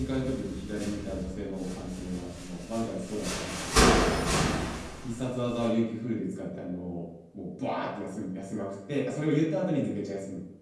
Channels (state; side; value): identical; both; correlation 1.00